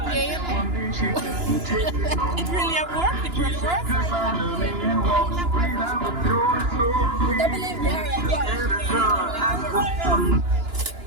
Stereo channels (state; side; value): late; left; 2.9 ms